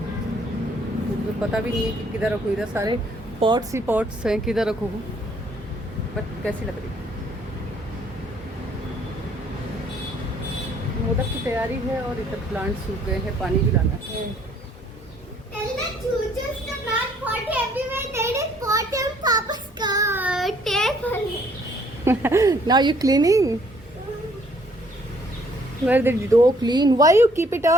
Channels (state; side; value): normal; both; correlation 0.63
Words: मुझे पता भी नहीं है कि किधर रखूँ। इधर सारे पॉट्स ही पॉट्स हैं, किधर रखूँ, बट कैसी लग रही है। मोदक की तैयारी है और इधर प्लांट सूख गए हैं, पानी भी लाना है। Now you cleaning? Where the dough clean? Why you keep it